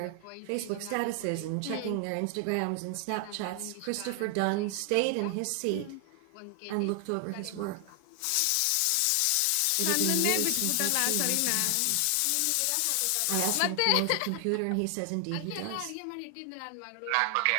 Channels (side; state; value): both; different; correlation 0.00